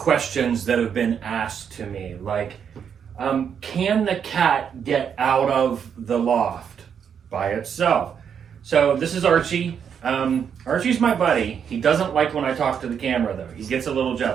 that have been asked to me. Like, can the cat get out of the loft by itself? So this is Archie. Archie's my buddy. He doesn't like when I talk to the camera though. He gets a little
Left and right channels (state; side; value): quieter; left; 7.6 dB